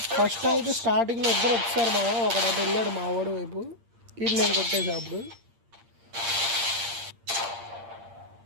ఫస్ట్ అయితే స్టార్టింగ్లో ఇద్దరు వచ్చారు మా, ఒకడు అటు వెళ్ళాడు మా వాడు వైపు, ఇది నేను కొట్టేసి అప్పుడు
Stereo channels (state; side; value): late; left; 8.7 ms